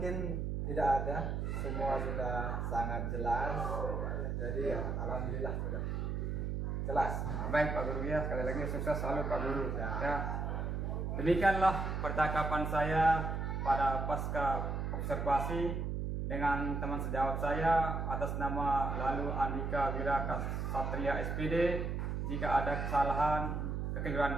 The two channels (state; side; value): noise; right; hum, 1 dB below the sound